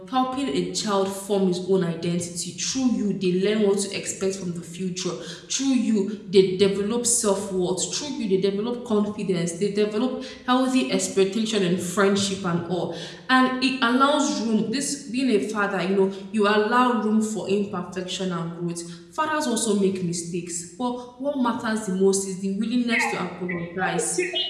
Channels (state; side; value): identical; both; correlation 1.00